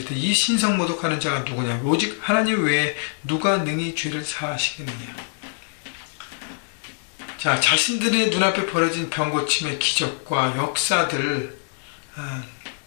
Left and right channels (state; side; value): silent; right; digital silence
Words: 이 신성 모독하는 자가 누구냐? 오직 하나님 외에 누가 능히 죄를 사하시겠느냐? 자, 자신들의 눈앞에 벌어진 병고침의 기적과 역사들